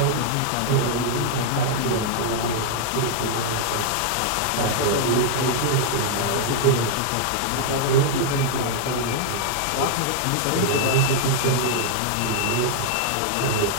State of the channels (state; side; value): different; both; correlation -0.01